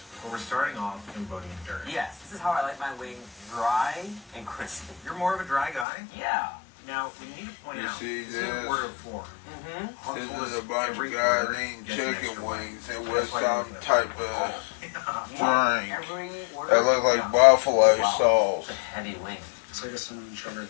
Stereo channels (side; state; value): right; drops out; at 5.9 s